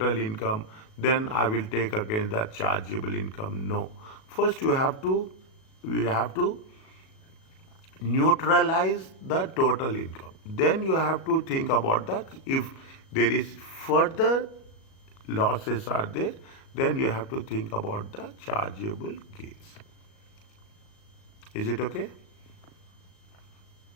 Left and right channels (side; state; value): right; late; 37 ms